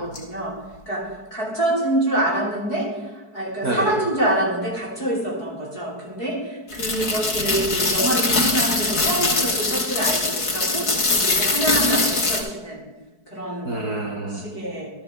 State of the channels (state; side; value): late; right; 4.6 ms